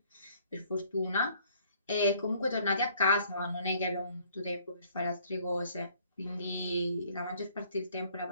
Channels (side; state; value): both; inverted; correlation -0.61